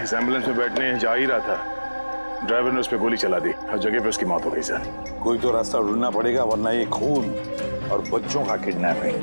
इस एम्बुलेंस में बैठने जा ही रहा था, ड्राइवर ने उस पर गोली चला दी और जगह पे उसकी मौत हो गई सर। कोई तो रास्ता ढूंढना पड़ेगा, वरना ये खून और बच्चों का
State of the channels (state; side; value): inverted; both; correlation -1.00